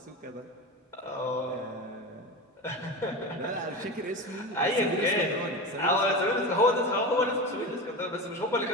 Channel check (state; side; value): normal; both; correlation 0.24